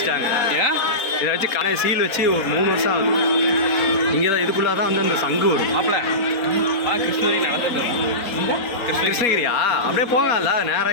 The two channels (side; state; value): right; late; 4.2 ms